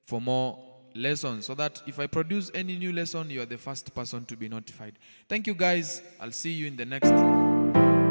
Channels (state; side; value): inverted; both; correlation -1.00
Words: for more lessons, so that if I produce any new lesson, you are the first person to be notified. Thank you guys. I'll see you in the next